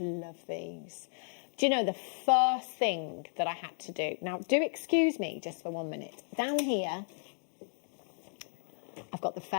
these. Do you know the first thing that I had to do? Now, do excuse me just for 1 minute. Down here, I've got the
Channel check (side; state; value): right; silent; digital silence